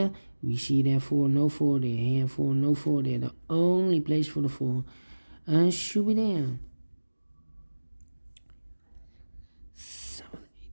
We see there 4, no 4 there, here 4, no 4 there. The only place for the 4 should be there. 7,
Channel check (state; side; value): inverted; both; correlation -1.00